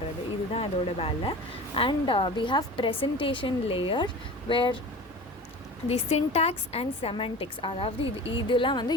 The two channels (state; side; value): normal; both; correlation 0.36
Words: இதுதான் இதோட வேலை. And we have presentation layer where the syntax and semantics, அதாவது இதெல்லாம் வந்து